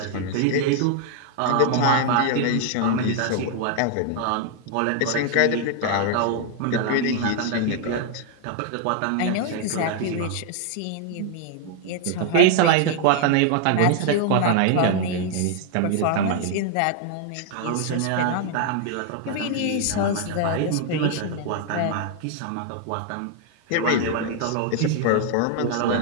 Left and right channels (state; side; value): different; both; correlation 0.00